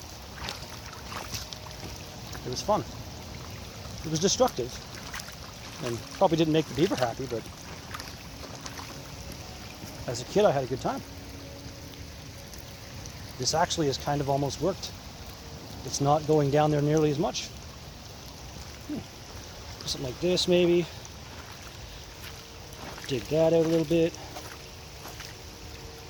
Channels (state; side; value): identical; both; correlation 1.00